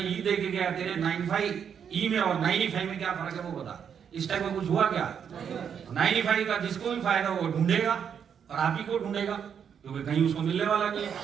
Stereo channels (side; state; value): left; quieter; 7.7 dB